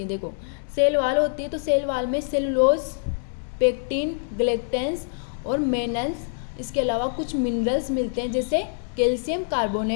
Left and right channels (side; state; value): right; silent; digital silence